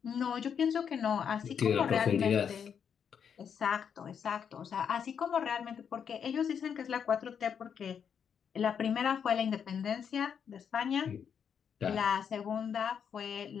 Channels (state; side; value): quieter; right; 7.5 dB